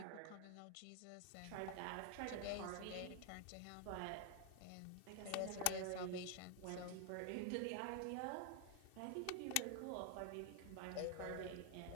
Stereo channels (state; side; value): different; both; correlation 0.00